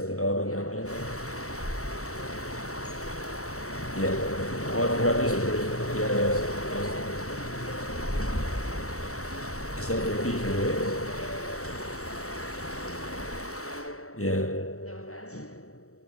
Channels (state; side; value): late; right; 0.64 ms